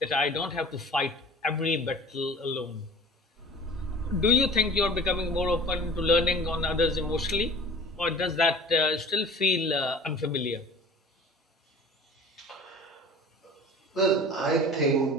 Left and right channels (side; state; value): both; normal; correlation 0.43